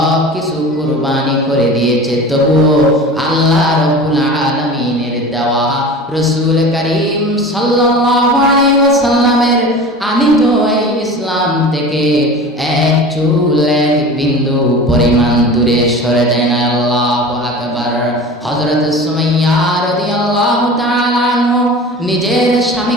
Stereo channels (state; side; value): normal; both; correlation 0.36